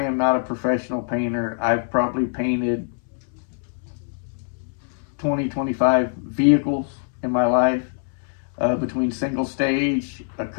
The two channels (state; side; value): silent; right; 63 dB below the other